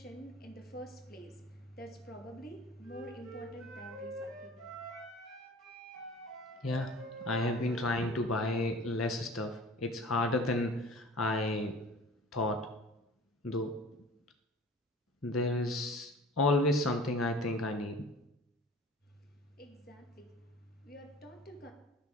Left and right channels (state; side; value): normal; both; correlation 0.43